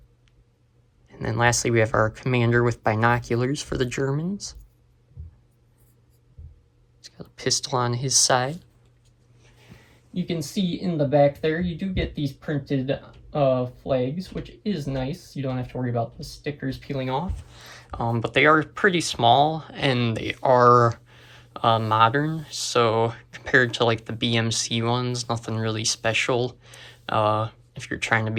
And then lastly, we have our commander with binoculars for the Germans. He's got a pistol on his side. You can see in the back there, you do get these printed flags, which is nice. You don't have to worry about the stickers peeling off. But they are pretty small, and they are modern, so compared to like the BMC ones, nothing really special. If you're trying to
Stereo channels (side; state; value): both; identical; correlation 1.00